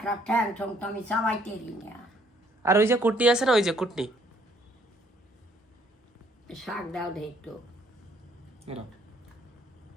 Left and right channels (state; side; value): normal; both; correlation 0.65